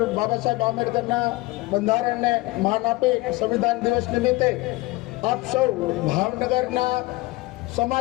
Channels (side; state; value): right; quieter; 21.3 dB